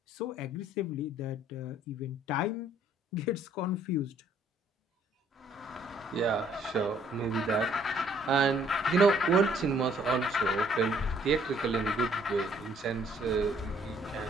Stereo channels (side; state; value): both; normal; correlation 0.63